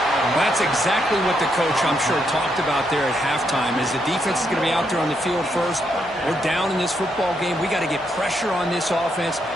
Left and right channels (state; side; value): normal; both; correlation 0.78